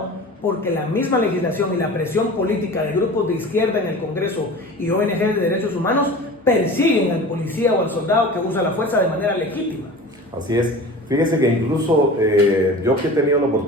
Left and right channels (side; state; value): both; normal; correlation 0.37